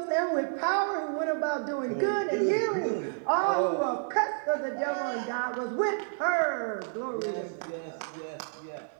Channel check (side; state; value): left; silent; digital silence